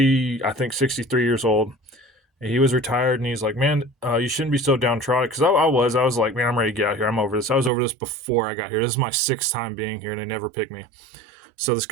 I think 63 years old, he was retired, and he's like, man, you shouldn't be so downtrodden. Because I was like, man, I'm ready to get out here. I'm over this. I was over this before I got here. This is my sixth time being here, and they never picked me. So this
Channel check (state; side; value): drops out; left; at 7.7 s